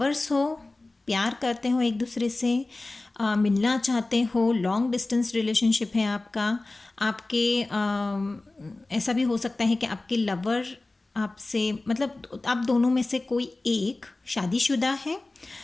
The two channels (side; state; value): right; quieter; 3.0 dB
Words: हो, प्यार करते हो एक दूसरे से, मिलना चाहते हो, लॉन्ग डिस्टेंस रिलेशनशिप है आपका। आपके ऐसा भी हो सकता है कि आपके लवर आपसे, मतलब आप दोनों में से कोई एक शादीशुदा है